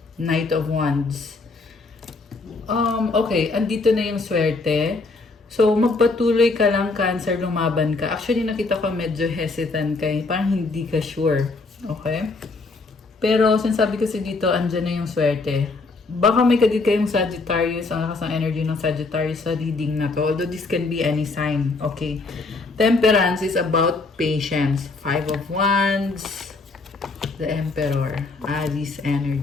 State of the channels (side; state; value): right; quieter; 3.7 dB